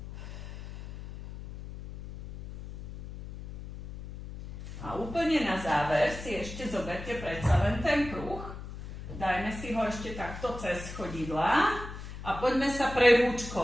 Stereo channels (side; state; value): left; noise; hum, 10 dB below the sound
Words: A úplne na záver si ešte zoberte predsa len ten kruh. dajme si ho ešte takto cez chodidla a poďme sa